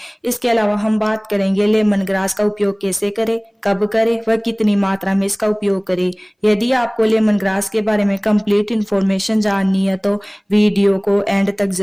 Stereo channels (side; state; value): both; identical; correlation 1.00